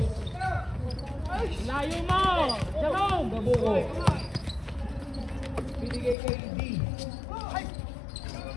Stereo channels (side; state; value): right; drops out; at 6.2 s